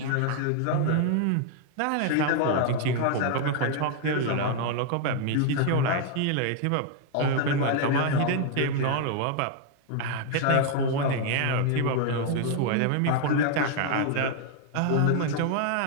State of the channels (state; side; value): different; both; correlation 0.00